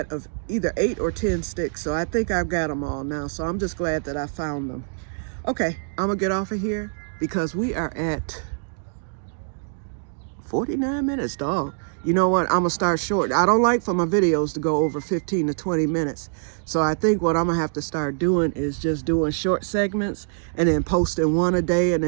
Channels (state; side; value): silent; left; digital silence